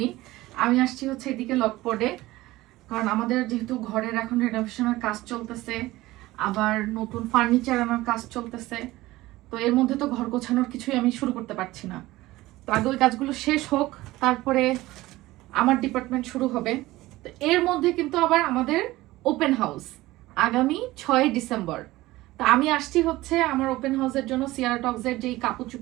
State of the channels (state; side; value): quieter; left; 18.1 dB